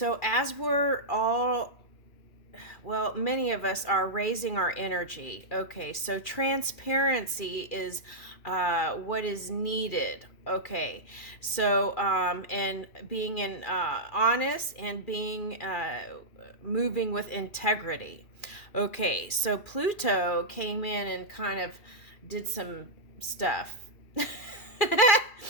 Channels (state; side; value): late; right; 2.4 ms